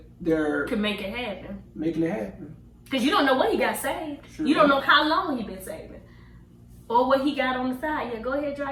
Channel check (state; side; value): identical; both; correlation 1.00